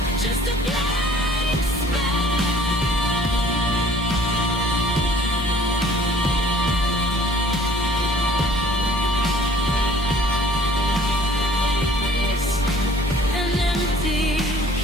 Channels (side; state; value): both; normal; correlation 0.54